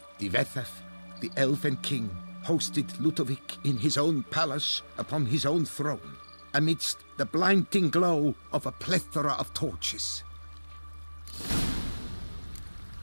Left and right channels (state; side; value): inverted; both; correlation -1.00